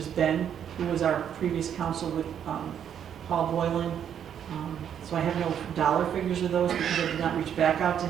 Ben, who was our previous counsel with Paul Boylan. So I have no dollar figures of those because I did not reach back out to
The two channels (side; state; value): left; quieter; 8.9 dB